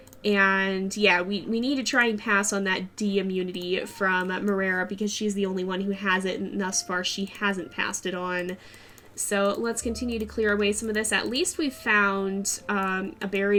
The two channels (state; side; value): identical; both; correlation 1.00